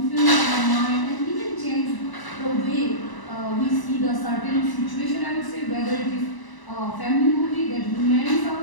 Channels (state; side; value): late; right; 1.0 ms